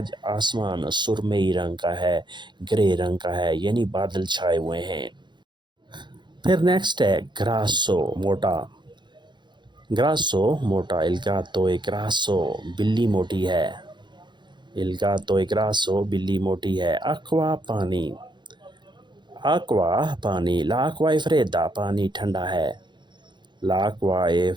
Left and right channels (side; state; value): left; late; 0.22 ms